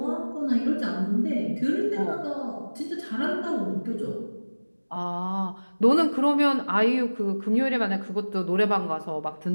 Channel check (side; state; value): both; inverted; correlation -1.00